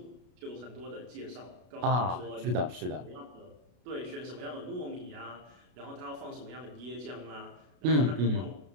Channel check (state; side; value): late; left; 33 ms